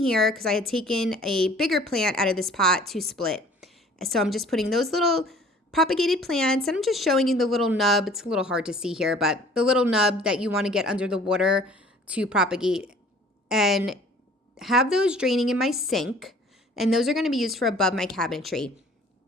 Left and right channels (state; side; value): normal; both; correlation 0.51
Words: because I had taken a bigger plant out of this pot to split. So I'm just putting those little propagated plants, and I'm just showing you the little nub. It's a little hard to see here, but the little nub that you want to get under the water to propagate, and have those draining in my sink. And those are going to be used for above my cabinetry.